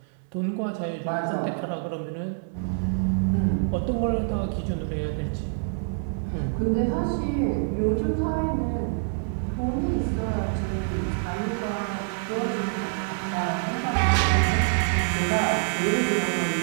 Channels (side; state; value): left; silent; digital silence